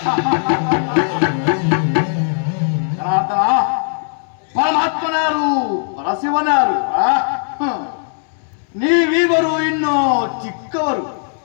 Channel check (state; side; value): silent; right; digital silence